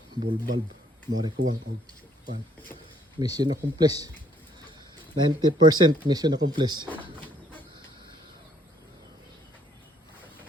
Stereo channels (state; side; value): normal; both; correlation 0.65